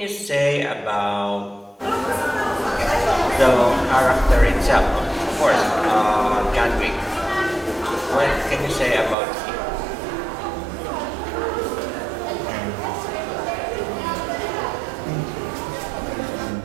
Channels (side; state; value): left; drops out; at 9.2 s